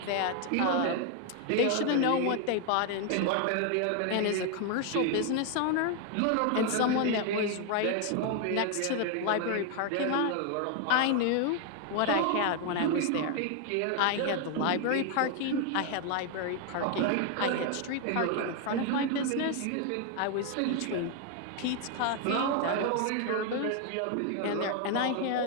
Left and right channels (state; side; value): different; both; correlation 0.00